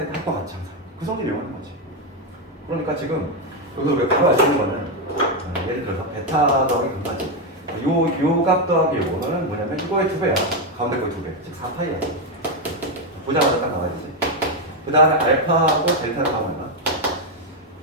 합과 같이 항상 그 성질을 이용하는 거지. 그러니까 지금 여기서 우리가 바로 알 수 있는 거는 예를 들어서 베타 더하기 감마지. 값 더하기 요거는 뭐냐면 이거의 2배야. 가운데 거의 2배. 즉 4파이야. 보자마자 딱 나와야 되지. 그 다음에 알파하고 델타를 하면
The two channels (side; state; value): both; normal; correlation 0.05